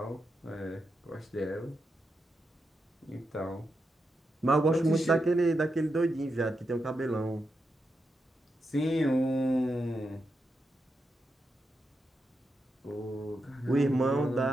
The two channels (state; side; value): normal; both; correlation 0.86